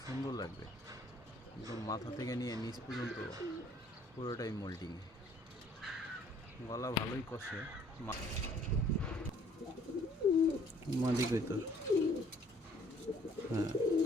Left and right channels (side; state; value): both; normal; correlation 0.60